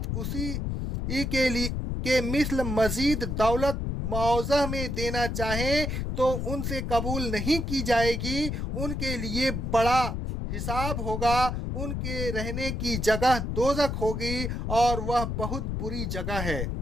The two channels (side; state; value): left; noise; rumble, 2 dB below the sound